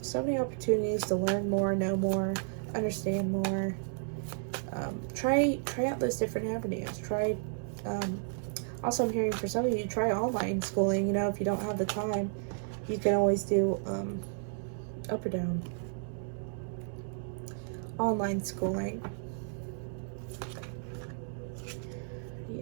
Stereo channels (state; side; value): silent; left; digital silence